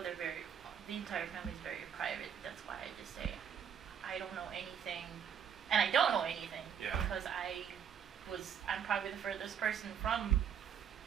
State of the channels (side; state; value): left; quieter; 8.2 dB